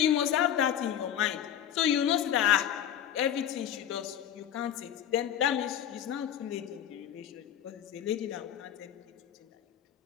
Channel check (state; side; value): quieter; right; 10.2 dB